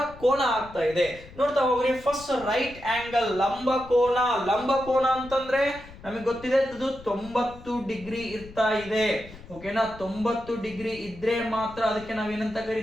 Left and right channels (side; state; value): left; noise; rumble, 18 dB below the sound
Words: ಕೋನ ಆಗ್ತಾ ಇದೆ ನೋಡ್ತಾ ಹೋಗ್ರಿ. ಫಸ್ಟ್ ರೈಟ್ ಆಂಗಲ್, ಲಂಬ ಕೋನ. ಲಂಬ ಕೋನ ಅಂತಂದ್ರೆ ನಮಗೆ ಗೊತ್ತಿದೆ ಇದು 90 ಡಿಗ್ರಿ ಇರ್ತಾ ಇದೆ. ಓಕೆನಾ, 90 ಡಿಗ್ರಿ ಇದ್ರೆ ಮಾತ್ರ ಅದಕ್ಕೆ ನಾವೇನಂತ